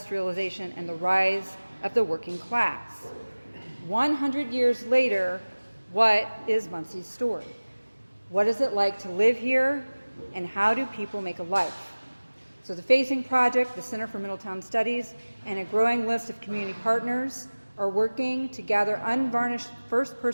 and the rise of the working class. 100 years later, what is Muncie's story? What is it like to live here, and how do people make a life? So the Facing Project, the Center for Middletown Studies, and a growing list of community partners are working to gather unvarnished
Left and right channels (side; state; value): both; inverted; correlation -1.00